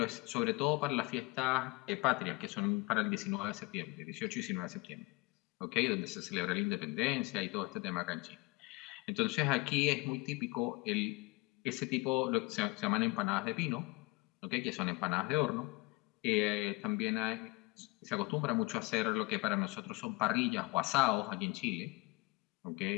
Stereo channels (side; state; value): right; quieter; 25.3 dB